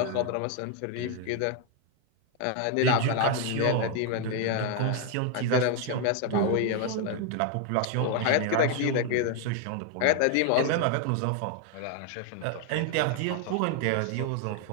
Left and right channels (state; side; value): different; both; correlation 0.00